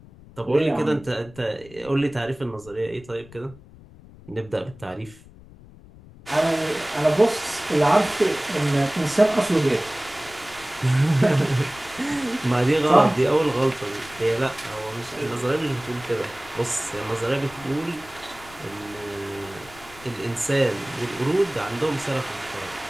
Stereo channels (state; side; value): noise; left; rumble, 21 dB below the sound